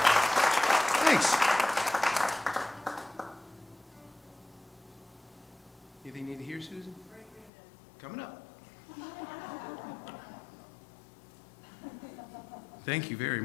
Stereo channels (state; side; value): drops out; right; at 7.5 s